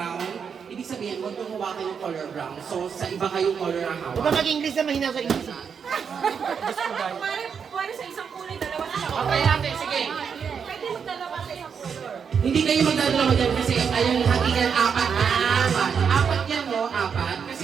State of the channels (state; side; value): quieter; left; 6.7 dB